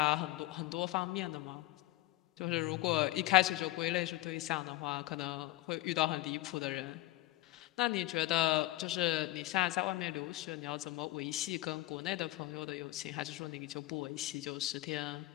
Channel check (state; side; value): quieter; right; 17.7 dB